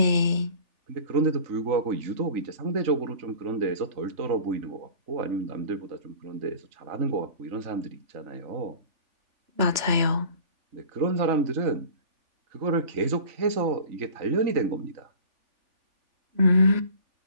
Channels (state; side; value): late; left; 3.1 ms